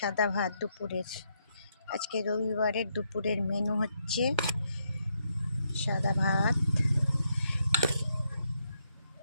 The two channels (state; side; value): inverted; both; correlation -0.78